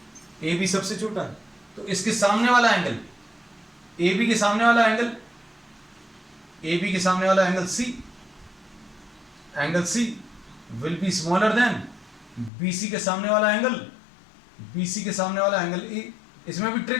ए बी सबसे छोटा है, तो इसके सामने वाला एंगल, ए बी के सामने वाला एंगल, ए बी के सामने वाला angle C will be smaller than B C के सामने वाला एंगल, बी सी के सामने वाला एंगल ए। इसमें भी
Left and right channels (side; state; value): right; drops out; at 12.5 s